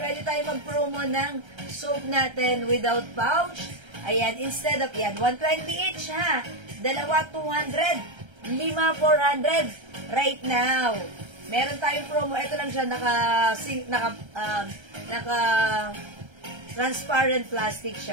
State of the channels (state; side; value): late; left; 1.3 ms